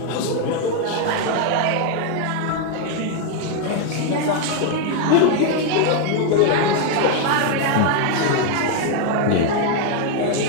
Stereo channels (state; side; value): different; both; correlation 0.01